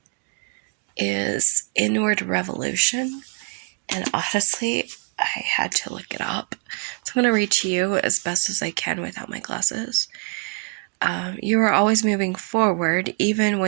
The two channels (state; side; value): quieter; left; 36.4 dB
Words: is Inward Revolution. And honestly, I had to look it up. So I'm going to read to you as best as I can without my glasses. You are always moving forward, even